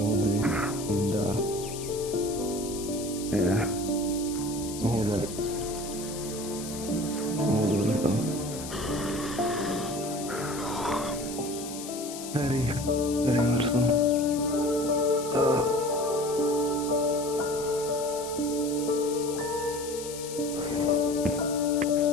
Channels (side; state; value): left; noise; hiss, 11 dB below the sound